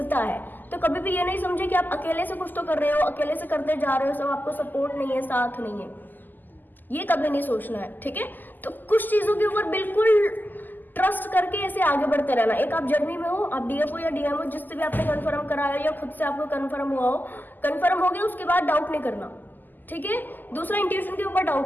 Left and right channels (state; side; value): late; right; 0.087 ms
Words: है। तो कभी भी ये नहीं समझे कि आप अकेले से कुछ तो कर रहे हो, अकेले से करते जा रहे हो, सब आपको सपोर्ट नहीं है, साथ नहीं है, ये कभी नहीं सोचना है, ठीक है। तो कुछ चीजों के ऊपर बिल्कुल ट्रस्ट करके ऐसे आगे बढ़ते रहना। एक आप जर्नी में हो, आप डीएफ हो या डीएम हो, जिससे भी आपने कंफर्म कराया या खुद से आपको कंफर्म हुआ हो, कंफर्म हो गया, उसके बाद डाउट नहीं करना, ठीक है। दूसरा, इंट्यूशन के ऊपर